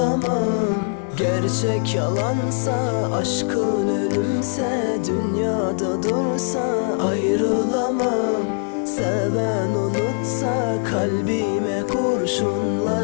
Gerçek yalansa, aşkın ölümse, dünyada dursa ayrılamam. Seven unutsa, kalbime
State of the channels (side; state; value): right; silent; 62 dB below the other